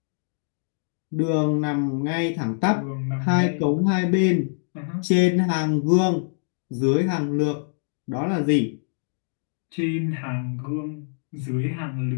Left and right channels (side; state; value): right; silent; digital silence